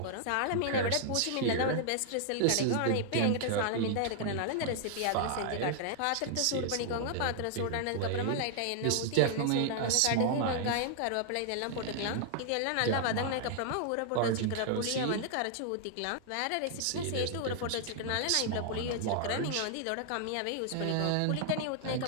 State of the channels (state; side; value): different; both; correlation -0.01